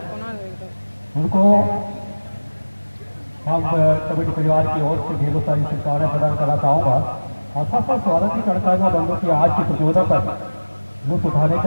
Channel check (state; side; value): inverted; both; correlation -1.00